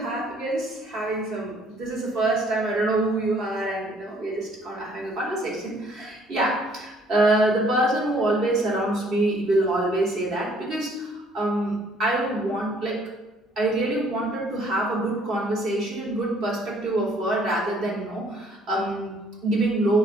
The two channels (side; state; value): both; normal; correlation 0.61